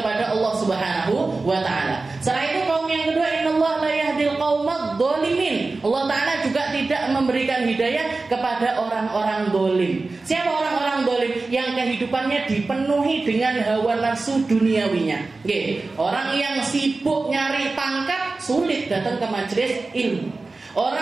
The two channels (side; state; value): left; quieter; 3.6 dB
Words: Allah Subhanahu wa Ta'ala. Setelah itu kaum yang kedua, innallaha la yahdil qaumad dzalimin. Allah Ta'ala juga tidak memberikan hidayah kepada orang-orang dolim. Siapa orang-orang dolim? Yang kehidupannya dipenuhi dengan hawa nafsu duniawinya. Orang yang sibuk nyari pangkat, sulit datang ke majelis ilmu.